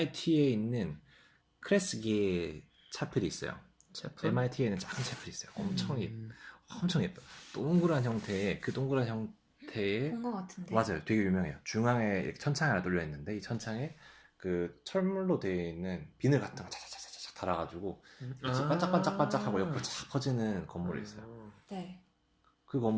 있는 크레스기의 차필이 있어요. MIT에는 작은 차필이 있어요. 엄청 예뻐요. 동그란 형태의 그 동그란 형태의 본 것 같은데. 맞아요. 되게 유명해요. 중앙에 이렇게 천창이 하나 뚫려 있는데 이 천창에 그 철물로 되어 있는 비늘 같은 거 차차차차차 달아가지고 빛이 반짝반짝반짝하고 옆으로 쫙 퍼지는 건물이 있어요. 네. 그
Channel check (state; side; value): identical; both; correlation 1.00